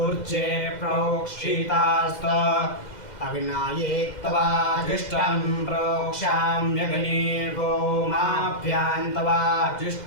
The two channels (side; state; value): right; late; 2.1 ms